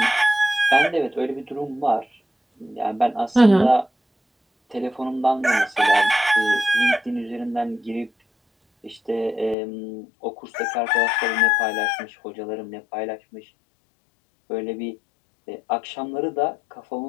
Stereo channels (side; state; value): right; drops out; at 9.6 s